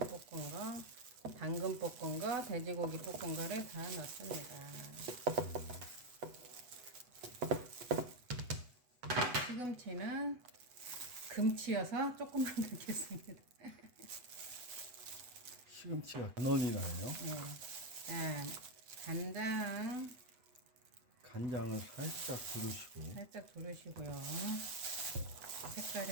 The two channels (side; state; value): left; late; 8.1 ms